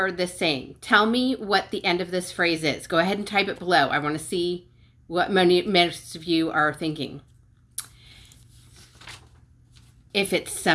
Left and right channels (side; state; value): both; identical; correlation 1.00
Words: this saying? Tell me what the end of this phrase is. Go ahead and type it below. I want to see what most of you are thinking. If it's